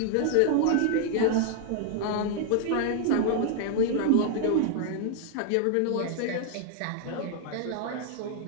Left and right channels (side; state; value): both; different; correlation 0.00